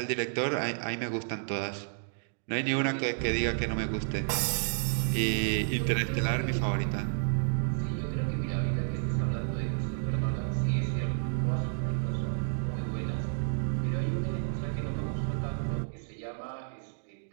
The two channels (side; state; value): left; silent; digital silence